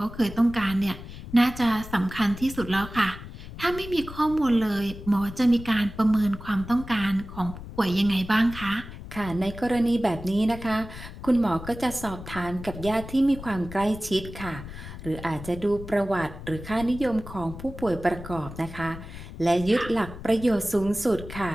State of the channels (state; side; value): noise; left; rumble, 12 dB below the sound